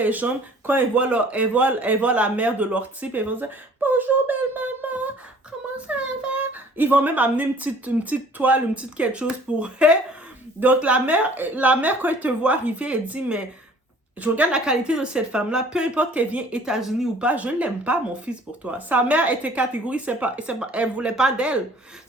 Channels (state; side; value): normal; both; correlation 0.52